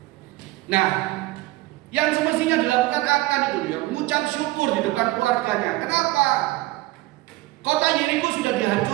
Nah, yang semestinya dilakukan akan itu ya, mengucap syukur di depan keluarganya. Kenapa? Kota Yeriko sudah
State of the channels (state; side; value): quieter; left; 19.0 dB